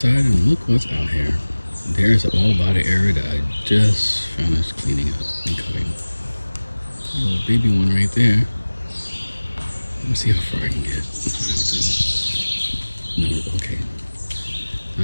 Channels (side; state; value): both; inverted; correlation -1.00